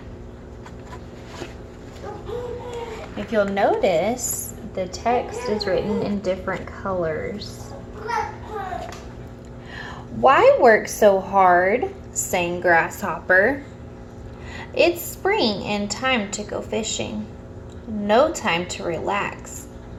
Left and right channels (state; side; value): identical; both; correlation 1.00